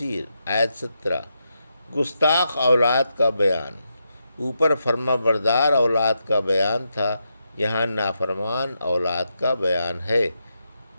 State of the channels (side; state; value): both; inverted; correlation -0.84